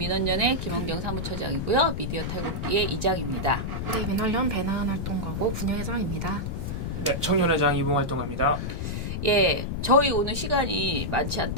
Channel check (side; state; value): left; noise; rumble, 3 dB below the sound